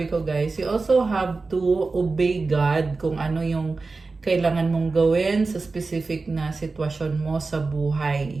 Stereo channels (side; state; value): left; quieter; 3.9 dB